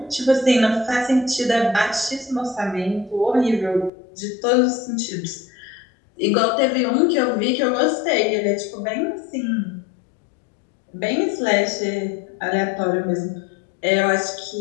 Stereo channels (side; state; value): right; drops out; at 3.9 s